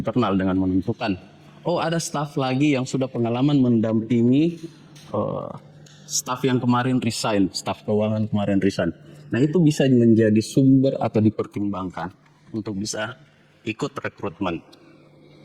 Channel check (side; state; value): both; identical; correlation 1.00